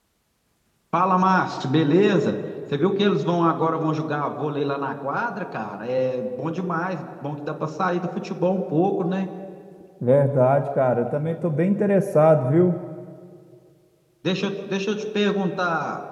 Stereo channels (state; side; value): identical; both; correlation 1.00